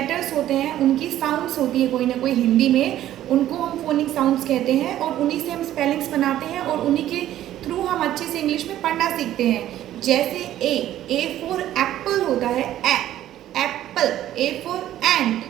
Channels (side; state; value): left; quieter; 12.8 dB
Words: होते हैं उनकी साउंड्स होती है कोई ना कोई हिंदी में, उनको हम फोनिक साउंड्स कहते हैं और उन्हीं से हम स्पेलिंग्स बनाते हैं और उन्हीं के थ्रू हम अच्छे से इंग्लिश में पढ़ना सीखते हैं। जैसे ए फॉर एप्पल होता है, एप्पल। ए फॉर एंट,